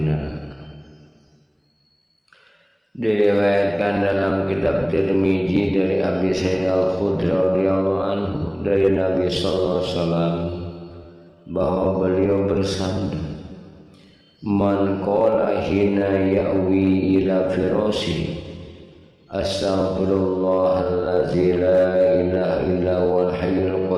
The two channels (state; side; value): identical; both; correlation 1.00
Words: Diriwayatkan dalam kitab Tirmizi dari Abi Sa'id Al-Khudri radhiyallahu anhu dari Nabi sallallahu alaihi wasallam bahwa beliau bersabda, "Man qala hina ya'wi ila firasi astaghfirullahallazi la ilaha illa huwal hayyul